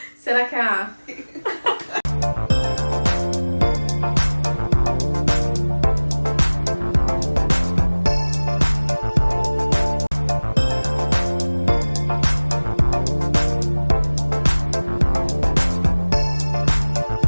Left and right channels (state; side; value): inverted; both; correlation -1.00